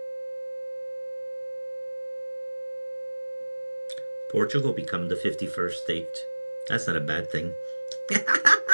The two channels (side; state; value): both; inverted; correlation -1.00